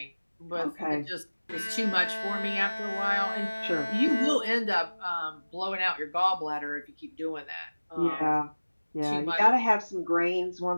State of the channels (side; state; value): both; inverted; correlation -1.00